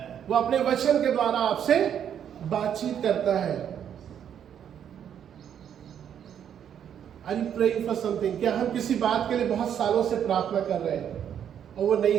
वो अपने वचन के द्वारा आपसे बातचीत करता है. Are you praying for something? क्या हम किसी बात के लिए बहुत सालों से प्रार्थना कर रहे हैं और वो नहीं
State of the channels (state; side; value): quieter; left; 9.0 dB